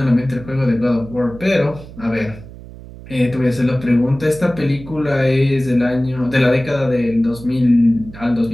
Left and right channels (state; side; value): noise; right; hum, 16 dB below the sound